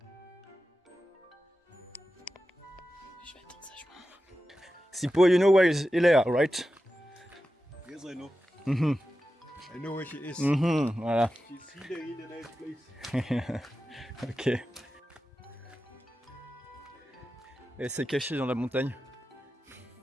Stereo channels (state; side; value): normal; both; correlation 0.92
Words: Je vais attendre sagement. Sipo, you know where is Léa, right? Yes, I know. Mhm. I know where she is. Mhm, voilà. She's here in a nice place. Ok. Elle s'est cachée dans la montagne.